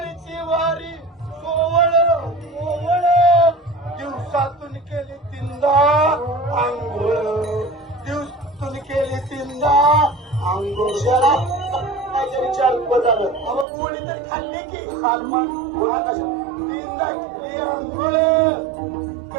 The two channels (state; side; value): drops out; left; at 13.7 s